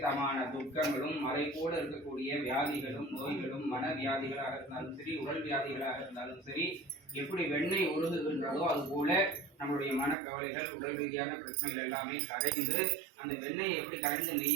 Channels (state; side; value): drops out; left; at 10.2 s